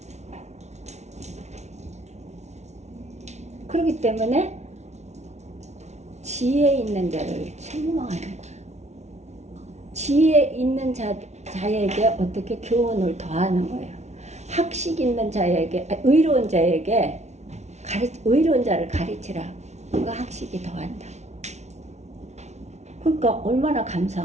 그렇기 때문에 지혜 있는 자를 책망하는 거예요. 지혜 있는 자에게 어떻게 교훈을 더하는 거예요. 학식 있는 자에게, 의로운 자에게 의로운 자를 가르치라. 그가 학식이 더한다. 그러니까 얼마나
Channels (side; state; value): left; late; 0.32 ms